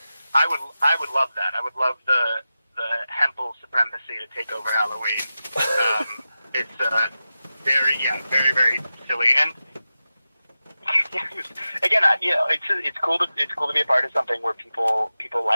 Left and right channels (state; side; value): inverted; both; correlation -0.93